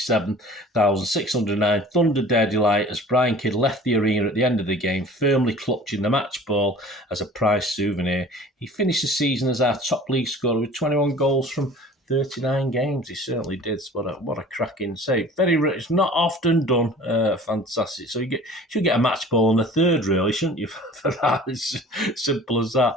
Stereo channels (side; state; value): both; normal; correlation 0.45